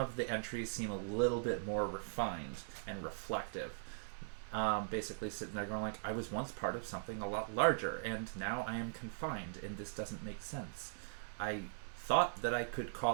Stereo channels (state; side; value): silent; left; digital silence